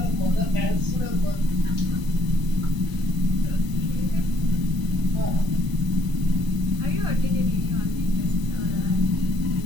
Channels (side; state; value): left; late; 1.0 ms